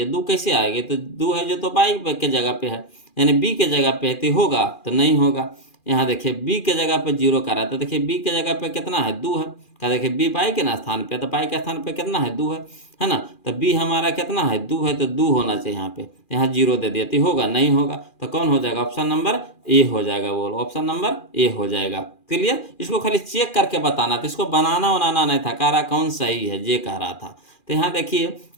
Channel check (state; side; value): late; right; 2.4 ms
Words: 2 कैसे आएगी, तो 2 है जो तो बाई के जगह पे है, यानी b के जगह पे है, तो होगा तो नहीं होगा। यहाँ देखिए b के जगह पे 0 का रहा है, तो देखिए b के जगह पे कितना है, 2 है, क्या देखिए b पाई के ना स्थान पे, तो पाई के स्थान पे कितना है, 2 है ना, तो b हमारा कितना है, 2 है, तो 2 होना चाहिए यहाँ पे, यहाँ 0 दे दिया, तो होगा नहीं होगा, तो कौन हो जाएगा, ऑप्शन नंबर ए हो जाएगा, बोलो ऑप्शन नंबर ए हो जाएगा। क्लियर, इसको खाली चेक करके बताना था, इसको बनाना बनाना नहीं था, कह रहा कौन सही है, ये कह रहा था। तो यहाँ देखिए